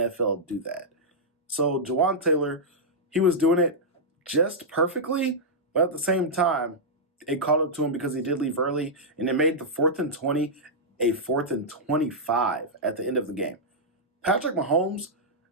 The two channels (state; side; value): normal; both; correlation -0.09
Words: do that. So Jawan Taylor, he was doing it just perfectly, but at the same time, it caught up to him because he did leave early, and it made the 4th and 20 a 4th and 25 at the end of the game. Patrick Mahomes,